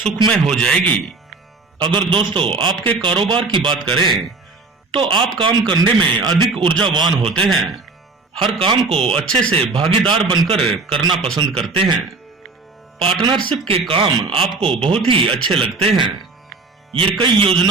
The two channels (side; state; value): left; quieter; 3.8 dB